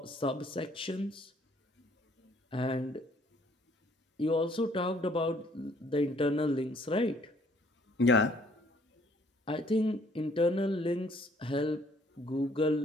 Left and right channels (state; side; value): normal; both; correlation 0.62